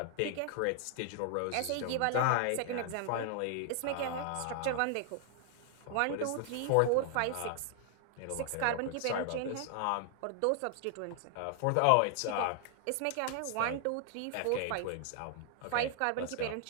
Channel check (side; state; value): both; different; correlation 0.00